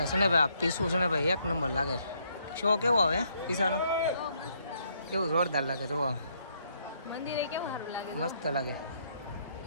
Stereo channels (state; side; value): inverted; both; correlation -0.71